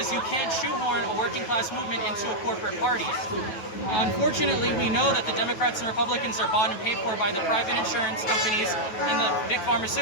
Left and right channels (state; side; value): late; right; 9.3 ms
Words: you can't shoehorn a working class movement into a corporate party. Unfortunately, we know that the Democrats and Republicans are bought and paid for by the private insurance companies and the big